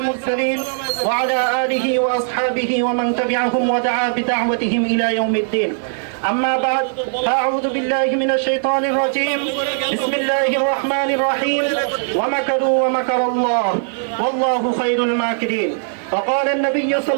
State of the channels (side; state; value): left; silent; digital silence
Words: وعلى آله وأصحابه ومن تبعهم ودعا بدعوتهم إلى يوم الدين. أما بعد فأعوذ بالله من الشيطان الرجيم. بسم الله الرحمن الرحيم. ومكروا ومكر الله والله خير الماكرين. وقال النبي